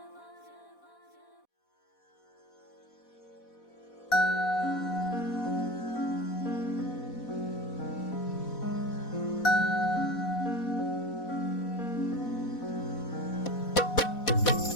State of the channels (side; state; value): right; late; 4.1 ms